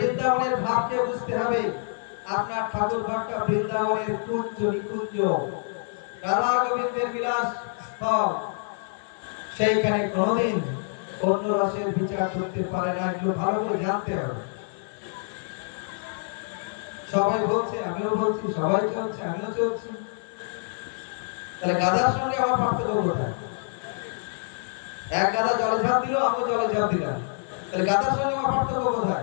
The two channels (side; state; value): right; silent; 59 dB below the other